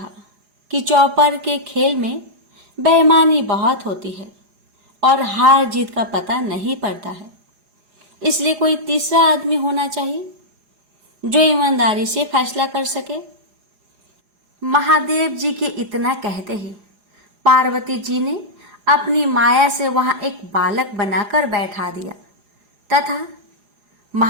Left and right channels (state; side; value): late; left; 4.9 ms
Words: कि चौपर के खेल में बेईमानी बहुत होती है और हार जीत का पता नहीं पड़ता है, इसलिए कोई तीसरा आदमी होना चाहिए जो ईमानदारी से फैसला कर सके। महादेव जी के इतना कहते ही पार्वती जी ने अपनी माया से वहां एक बालक बनाकर बैठा दिया तथा